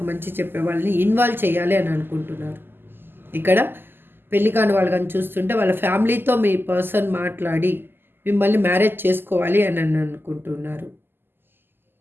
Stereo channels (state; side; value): late; left; 0.099 ms